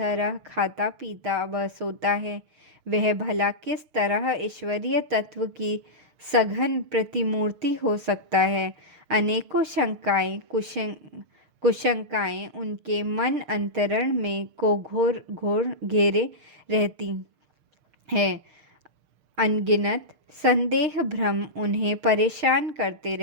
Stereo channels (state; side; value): late; left; 6.6 ms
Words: खाता पीता व सोता है, वह भला किस तरह ईश्वरीय तत्व की सघन प्रतिमूर्ति हो सकता है। अनेकों शंकाएं कुशंकाएं उनके मन अंतरण में को घोर घेरे रहती है। अनगिनत संदेह भ्रम उन्हें परेशान करते